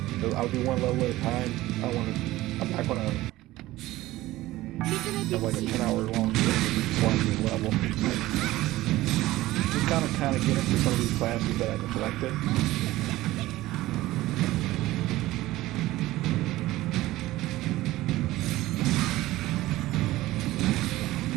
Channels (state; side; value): quieter; left; 17.0 dB